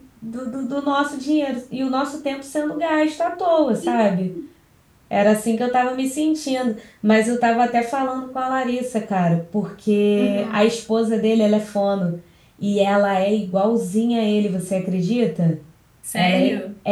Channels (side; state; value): both; identical; correlation 1.00